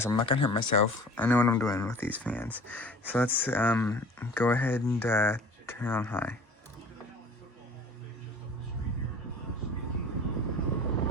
I'm not gonna hurt myself. I know what I'm doing with these fans. So let's go ahead and turn it on high.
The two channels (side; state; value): both; normal; correlation 0.45